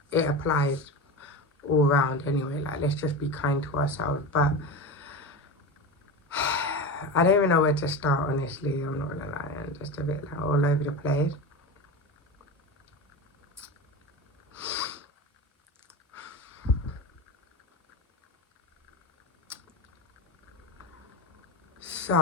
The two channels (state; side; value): normal; both; correlation 0.24